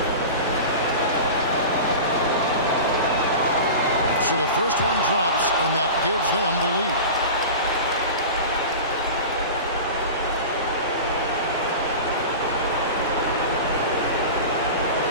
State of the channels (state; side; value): inverted; both; correlation -0.31